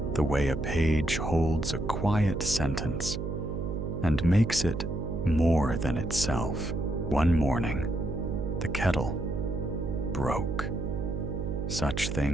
the way a page holds a quiet sentence and makes it more than itself. One morning, the kettle broke. Such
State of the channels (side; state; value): right; noise; hum, 4 dB below the sound